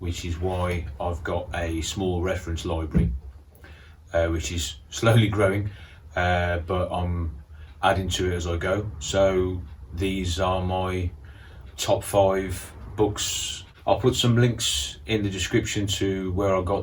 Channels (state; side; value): identical; both; correlation 1.00